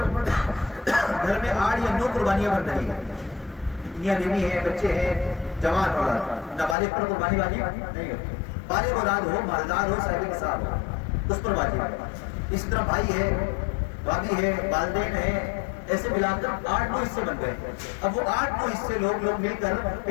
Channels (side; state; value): right; drops out; at 6.8 s